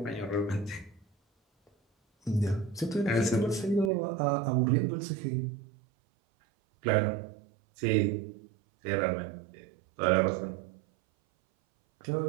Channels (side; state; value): left; drops out; at 3.9 s